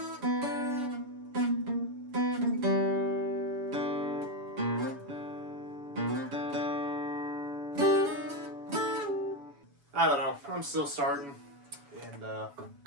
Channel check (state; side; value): late; left; 7.0 ms